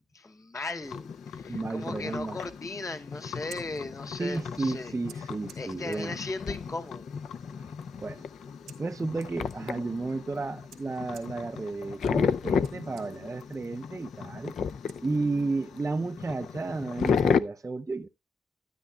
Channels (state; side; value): normal; both; correlation 0.82